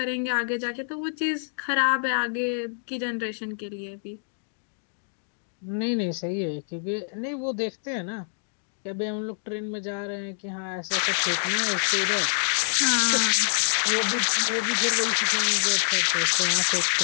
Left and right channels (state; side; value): silent; right; digital silence